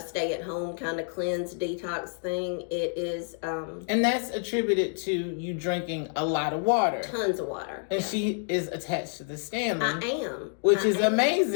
stay at home kind of cleanse detox thing. It is. And that's attributed to you drinking a lot of water. Tons of water. And she is attached to the Stanley. I am. Which is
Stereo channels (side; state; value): right; silent; 59 dB below the other